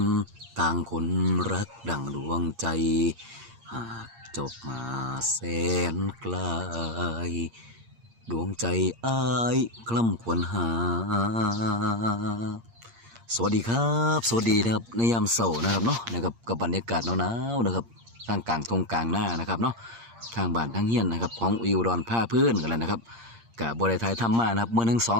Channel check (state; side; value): late; left; 8.6 ms